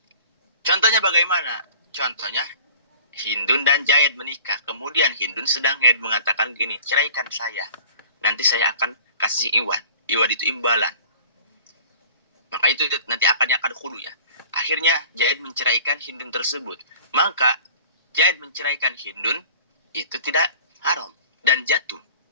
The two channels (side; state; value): both; inverted; correlation -0.45